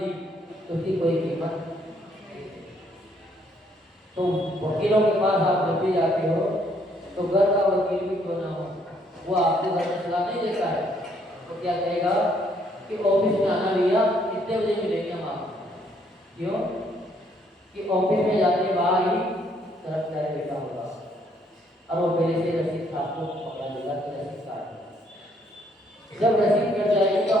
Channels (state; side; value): normal; both; correlation 0.68